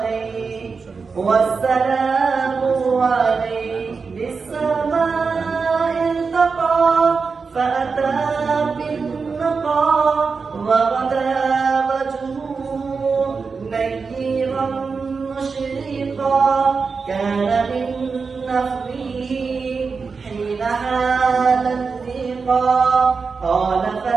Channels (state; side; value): quieter; left; 4.9 dB